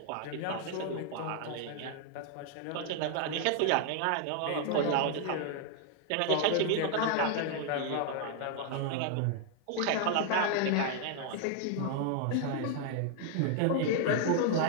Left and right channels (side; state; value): both; different; correlation 0.00